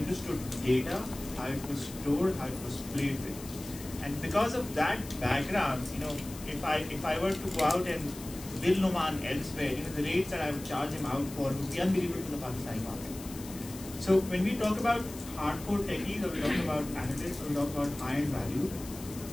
data, how it was stored, how it was played with. And because of that background, if I were to go out and bill Numan elsewhere, the rates that I would charge him out for would be unbelievable to the Pakistani market. So when we talk about hardcore techies, or we talk about analysts, or we talk about high-end value,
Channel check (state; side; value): noise; left; hiss, 15 dB below the sound